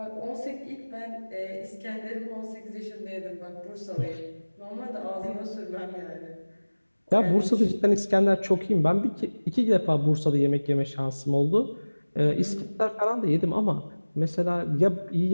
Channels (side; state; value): both; inverted; correlation -1.00